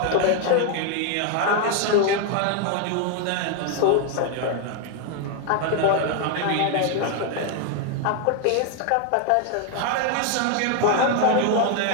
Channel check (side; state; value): both; different; correlation 0.01